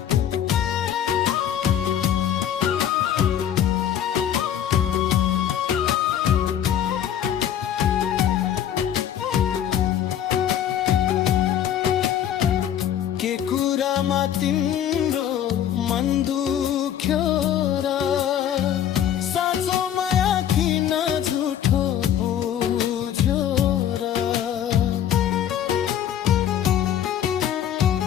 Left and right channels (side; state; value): right; quieter; 10.1 dB